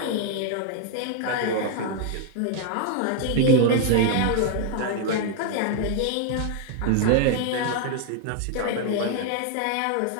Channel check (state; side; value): different; both; correlation 0.00